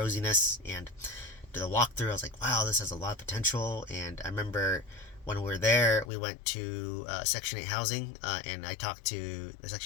and to the walkthrough, I was like, wow, this has a lot of potential. And I remember when we were there, we went to Section 8 housing, and I talked to the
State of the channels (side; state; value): right; drops out; at 6.1 s